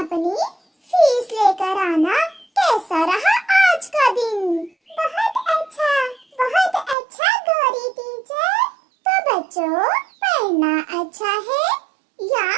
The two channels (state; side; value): drops out; left; at 7.0 s